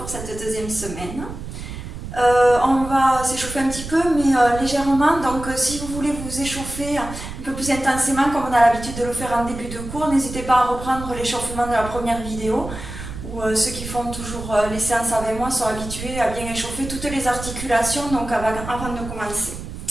cette deuxième semaine. On va s'échauffer un petit peu, mais légèrement. Donc si vous voulez vous échauffer un peu plus intensément, comme on a l'habitude de le faire en début de cours, n'hésitez pas à reprendre l'échauffement de la première vidéo, où ceux qui font toujours les séances avec moi sont habitués à bien échauffer toutes les articulations donc avant de commencer.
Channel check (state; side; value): noise; right; rumble, 10 dB below the sound